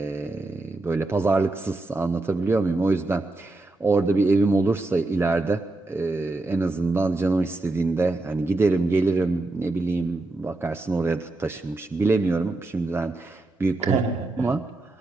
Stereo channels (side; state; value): left; quieter; 3.1 dB